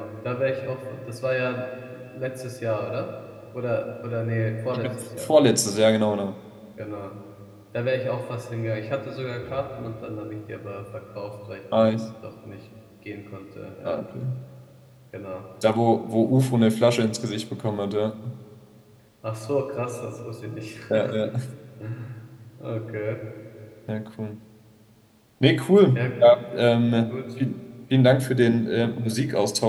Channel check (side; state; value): both; identical; correlation 1.00